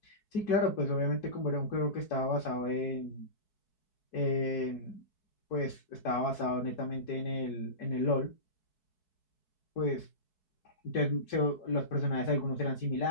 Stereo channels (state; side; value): late; right; 4.7 ms